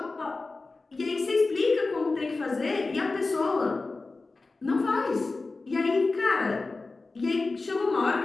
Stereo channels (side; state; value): right; quieter; 3.6 dB